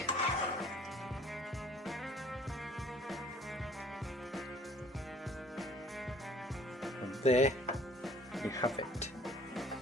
There you have it.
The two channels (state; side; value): normal; both; correlation 0.55